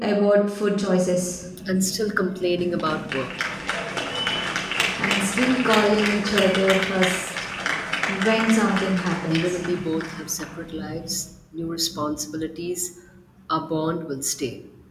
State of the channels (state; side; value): identical; both; correlation 1.00